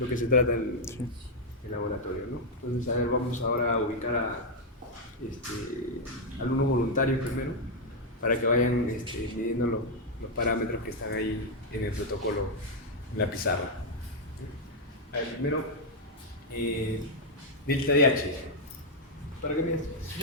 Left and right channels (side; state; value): both; normal; correlation -0.01